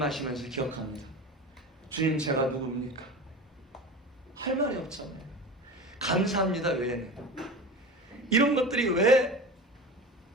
기억합니다. 주님, 제가 누굽니까? 할 말이 없잖아요. 감사합니다 외에는. 이런 것들이 왜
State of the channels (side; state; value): both; normal; correlation 0.31